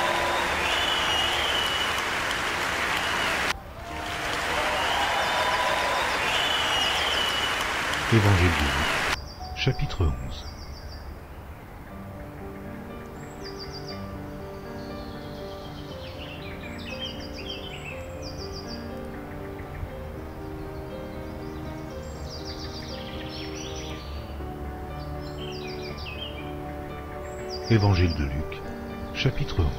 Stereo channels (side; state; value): both; identical; correlation 1.00